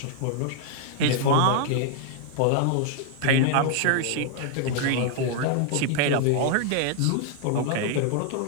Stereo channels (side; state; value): both; different; correlation 0.00